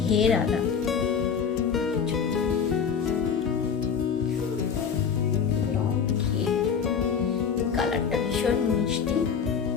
ঘেরালা, লং ঘের। কালারটা ভীষণ মিষ্টি,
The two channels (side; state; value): right; quieter; 6.7 dB